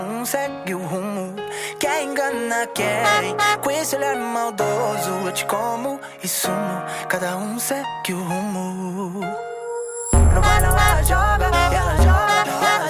segue o rumo. Quer engana quem? Com esse olhar maldoso eu te como e sumo. Cada um segue o rumo. No bailão ela joga, ela joga, ela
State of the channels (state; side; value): identical; both; correlation 1.00